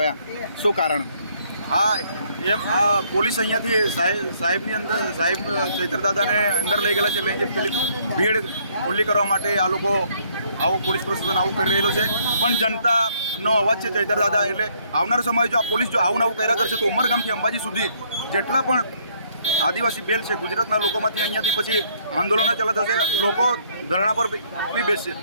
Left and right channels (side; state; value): both; inverted; correlation -0.66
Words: શું કારણ? હા, એમ આ પોલીસ અહીંયાથી સાહેબની અંદર સાહેબ ચૈતરદાદાને અંદર લઈ ગયેલા છે. લઈ પેલી ભીડ ખુલ્લી કરવા માટે આ લોકો આવું પોલીસ પ્રશાસન આવું કરી રહેલો છે. પણ જનતાનો અવાજ છે ચૈતરદાદા. એટલે આવનારો સમય જો આ પોલીસ જો આવું કર્યા કરશે તો ઉમરગામથી અંબાજી સુધી જેટલા પણ આદિવાસી બેલ છે ગુજરાતના લોકોમાંથી અહીંયાથી પછી આંદોલનો ચાલુ થશે, લોકો ધરણા પર બી બેસશે.